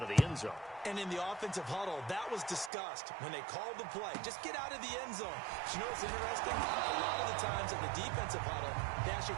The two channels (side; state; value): left; drops out; at 2.7 s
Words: of the end zone. And in the offensive huddle, that was discussed when they called the play. Just get out of the end zone. But you know what's interesting? A lot of the times in the defensive huddle, they